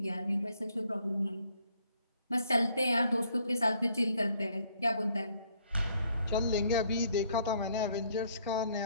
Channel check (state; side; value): inverted; both; correlation -0.66